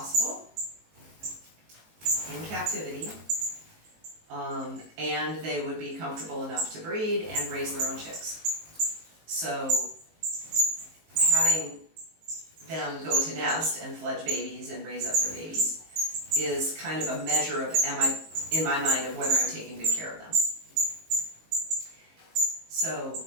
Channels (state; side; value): late; left; 19 ms